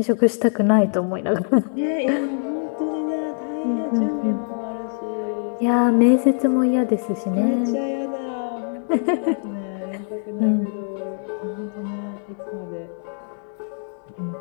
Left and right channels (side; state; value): right; silent; 63 dB below the other